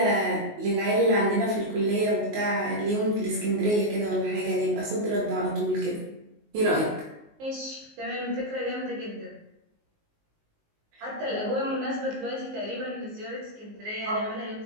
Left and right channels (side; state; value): left; late; 19 ms